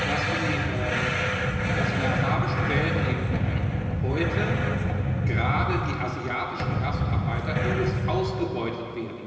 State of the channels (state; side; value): identical; both; correlation 1.00